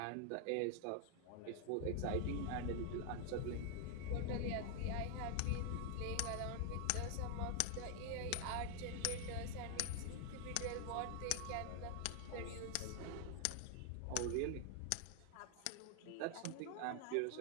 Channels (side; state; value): both; different; correlation 0.00